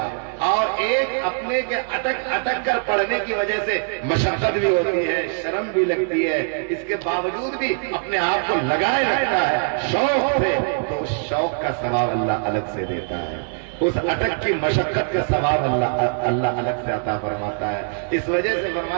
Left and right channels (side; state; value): left; silent; 61 dB below the other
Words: اور ایک اپنے کے اٹک اٹک کر پڑھنے کی وجہ سے مشقت بھی ہوتی ہے، شرم بھی لگتی ہے، اس کے باوجود بھی اپنے آپ کو لگائے رکھتا ہے شوق سے، تو اس شوق کا ثواب اللہ الگ سے دیتا ہے، اس اٹک کی مشقت کا ثواب اللہ الگ سے عطا فرماتا ہے۔ اس وجہ سے